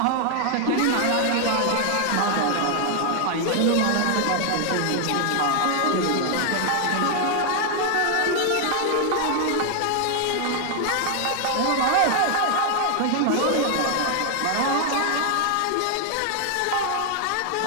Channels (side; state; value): both; different; correlation 0.00